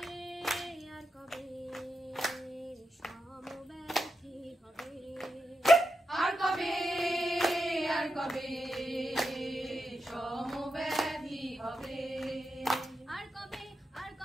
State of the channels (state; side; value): normal; both; correlation 0.87